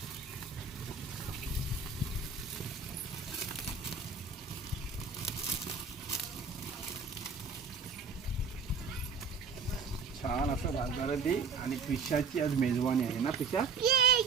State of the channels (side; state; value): left; quieter; 5.1 dB